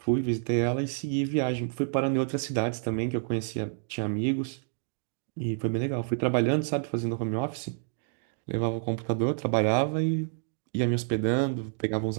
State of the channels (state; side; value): silent; left; digital silence